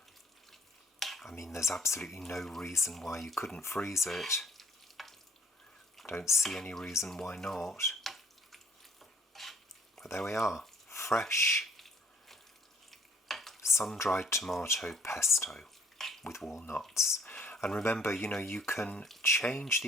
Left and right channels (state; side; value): normal; both; correlation 0.60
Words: I mean, there's absolutely no reason why you couldn't freeze it. Don't see any reason why not. But there we are, fresh sun-dried tomato pesto with walnuts. And remember, you can change